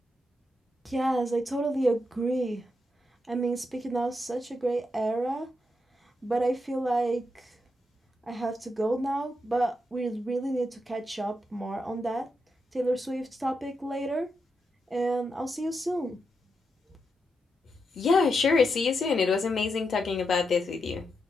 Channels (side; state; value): both; normal; correlation 0.84